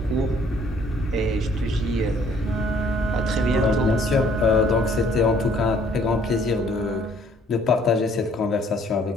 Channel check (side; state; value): both; normal; correlation 0.61